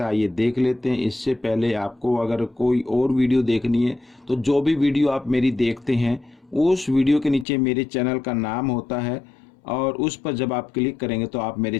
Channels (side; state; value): right; drops out; at 7.5 s